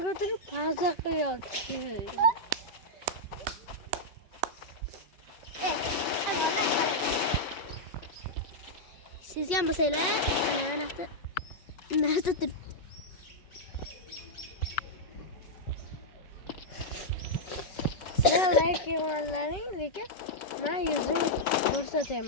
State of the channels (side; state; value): right; late; 5.3 ms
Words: ko'tarib pauza qilyapti. Sizga ham bo'lsanglar, narsa turib. Sizlar like qilganlaring, lekin men yuzimni